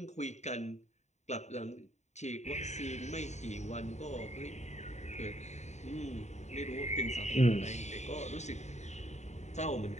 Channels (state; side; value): late; right; 0.33 ms